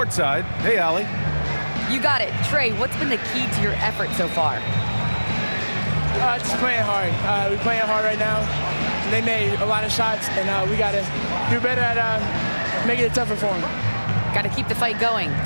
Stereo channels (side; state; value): both; inverted; correlation -1.00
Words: Hey, Allie. You got it. Trey, what's been the key to your effort so far? Just playing hard. We're playing hard right now. They made a lot of shots, and we got to do better at making it tougher for them. Got to keep the fight going,